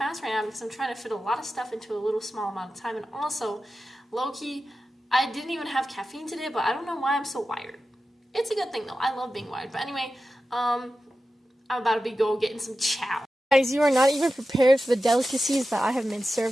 right now because I'm trying to fit a lot of stuff into a little small amount of time. And also, low-key, I didn't even have caffeine today, but I don't know why I'm so wired. It's a good thing, though. I love being wired. But anyway, I'm about to go getting some chow. Guys, you are not even prepared for the delicacies that I have been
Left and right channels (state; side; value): normal; both; correlation 0.93